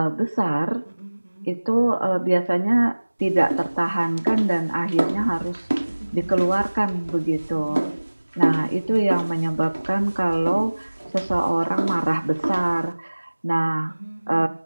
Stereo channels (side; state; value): both; inverted; correlation -1.00